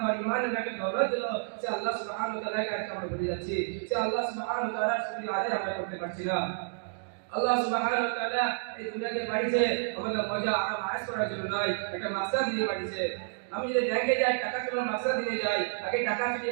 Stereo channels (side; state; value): left; silent; digital silence